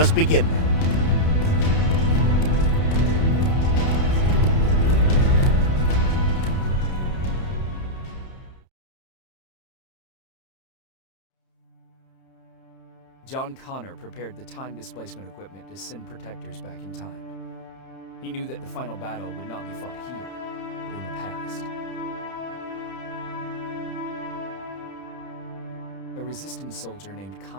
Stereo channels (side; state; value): right; late; 31 ms